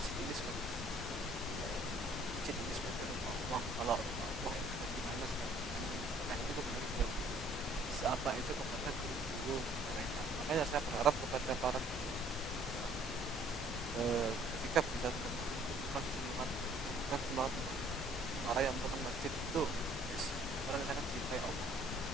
ini sebagai ini sebagai Allah. Kalau Allah itu gimana sekarang? Nah, itu kepada apa itu kepada guru-guru mereka.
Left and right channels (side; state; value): both; normal; correlation 0.58